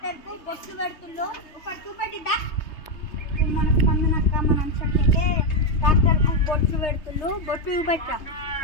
కు బొట్లు పెడుతుందో ఒక చూపెట్టిద్దా మన స్పందనక్క మన అంశకి ట్రాక్టర్ కు బొట్లు పెడుతుండ్రు. బొట్లు చూపెట్టా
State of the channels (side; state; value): right; late; 3.2 ms